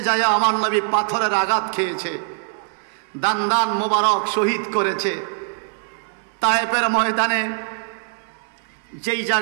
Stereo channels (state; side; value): silent; left; digital silence